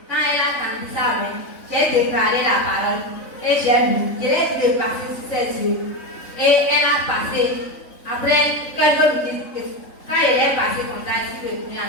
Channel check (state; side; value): late; right; 3.6 ms